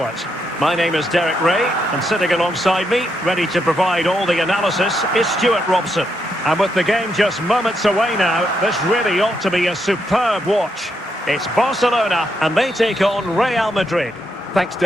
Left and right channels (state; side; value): normal; both; correlation 0.80